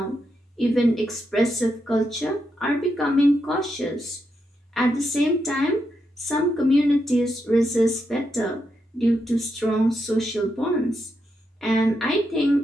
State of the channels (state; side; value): normal; both; correlation 0.83